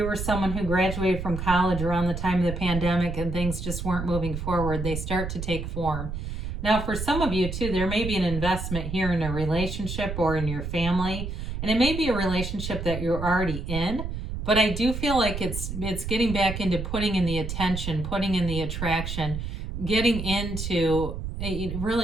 were someone who graduated from college around the time of the pandemic and things just weren't moving forward, they start to take form. Now, for some of you too, there may be an investment here in a relationship or in your family, and it may be a relationship that you're already in, but I do feel like it's getting back into putting in the attention, putting in the attraction, getting into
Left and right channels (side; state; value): right; noise; rumble, 5 dB below the sound